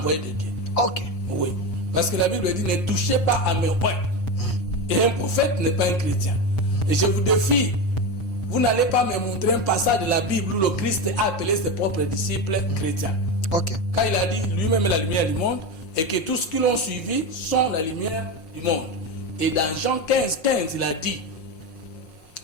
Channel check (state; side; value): late; right; 6.2 ms